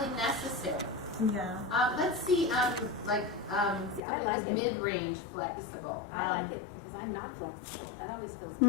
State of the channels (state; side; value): drops out; right; at 4.0 s